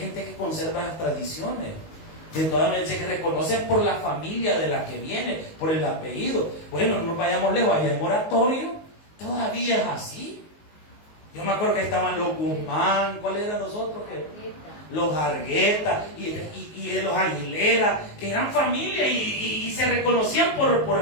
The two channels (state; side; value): late; right; 19 ms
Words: que conserva las tradiciones, que todavía se reconocen por la familia de la que viene, por el apellido. Bueno, no vayamos lejos, allá en Oratorio todavía es así. Yo me acuerdo que estaban los Guzmán, ¿cuáles eran los otros? Los Argueta y los Aguilera, que eran familia y se reconocían